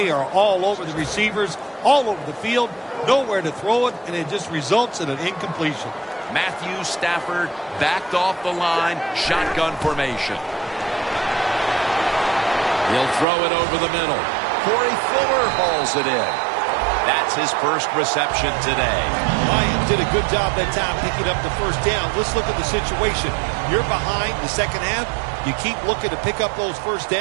are all over the receivers, all over the field, nowhere to throw it, and it just results in an incompletion. Matthew Stafford backed off the line, shotgun formation. He'll throw it over the middle. Corey Fuller hauls it in. That's his first reception today. Lions did a good job that time picking up the first down. Let's look at the situation. You're behind the second half. You keep looking to pick up those first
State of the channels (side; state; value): left; drops out; at 13.2 s